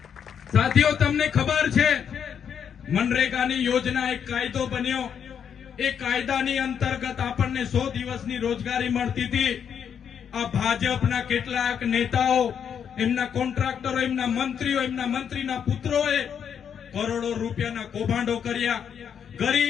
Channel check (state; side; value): quieter; right; 7.9 dB